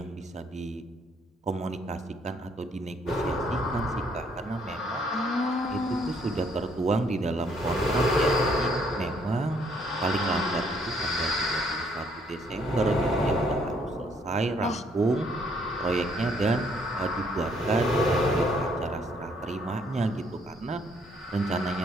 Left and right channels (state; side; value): normal; both; correlation 0.67